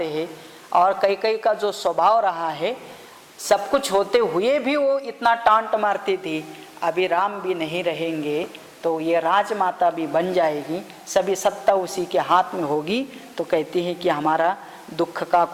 हैं और कैकेयी का जो स्वभाव रहा है, सब कुछ होते हुए भी वो इतना टांट मारती थी, अभी राम भी नहीं रहेंगे तो ये राजमाता भी बन जाएगी, सभी सत्ता उसी के हाथ में होगी। तो कहती है कि हमारा दुख का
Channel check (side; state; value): both; identical; correlation 1.00